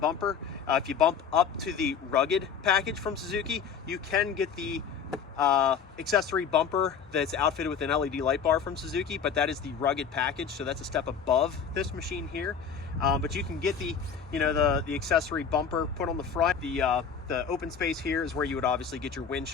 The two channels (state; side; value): quieter; right; 6.7 dB